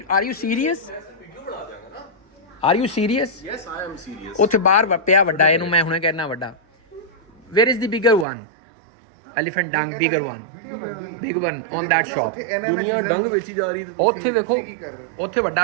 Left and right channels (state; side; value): drops out; left; at 8.2 s